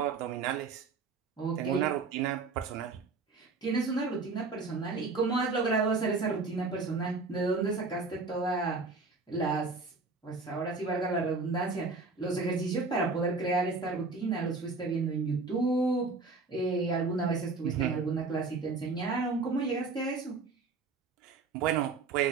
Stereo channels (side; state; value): left; quieter; 4.0 dB